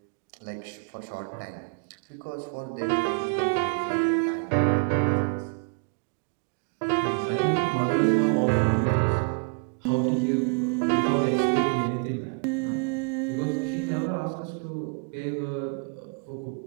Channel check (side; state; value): left; quieter; 38.2 dB